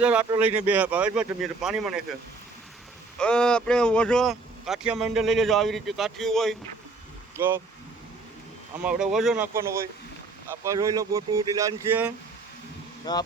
આટલો લઈને બે ભાવેશભાઈ તમે પાણીમાં નાખે. આપણે ઓછો કાઠિયા મંડળ લઈ લેજો. આવી રીતે કાઠિયું હોય તો આમાં આપણે ઓછો નાખવાનો હોય. આપણે જોઈ લો બોટની લાઈન છે.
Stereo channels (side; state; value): left; quieter; 3.8 dB